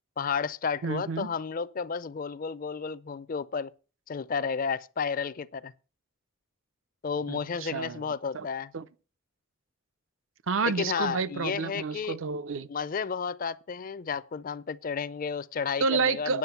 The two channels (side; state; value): both; normal; correlation -0.19